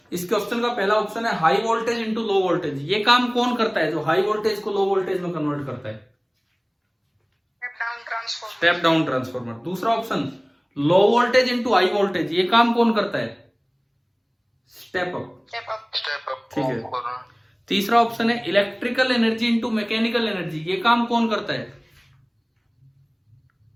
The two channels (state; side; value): identical; both; correlation 1.00